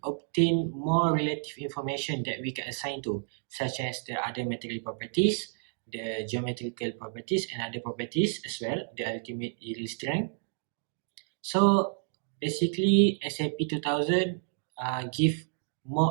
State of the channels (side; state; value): left; silent; digital silence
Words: obtain more relative information that we can assign to, such as the other material properties, the geometrical properties, and other properties as well, the ultimate yield strength. So basically, SAP 2000 give